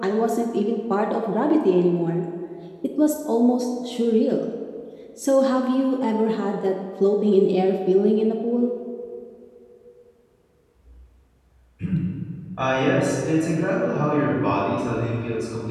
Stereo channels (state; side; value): identical; both; correlation 1.00